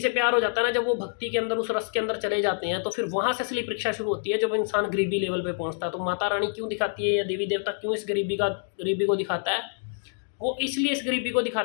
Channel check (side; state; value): right; silent; digital silence